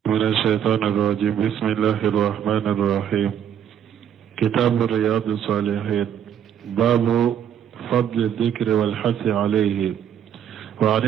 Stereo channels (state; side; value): quieter; left; 9.3 dB